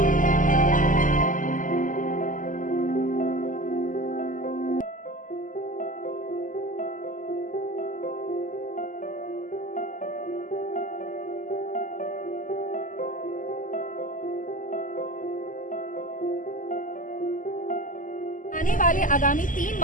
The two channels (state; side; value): late; right; 0.38 ms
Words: आने वाले आगामी 3